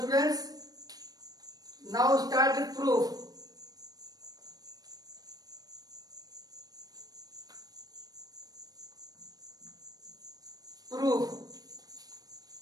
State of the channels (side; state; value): left; late; 0.19 ms